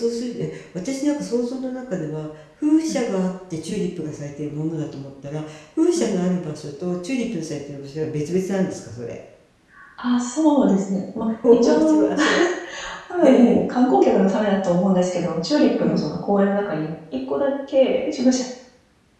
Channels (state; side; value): identical; both; correlation 1.00